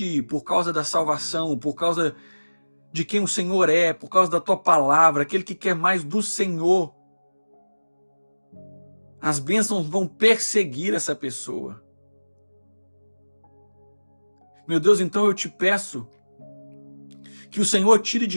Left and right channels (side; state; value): both; inverted; correlation -1.00